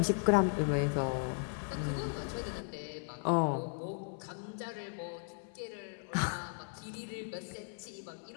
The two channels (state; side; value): silent; right; 53 dB below the other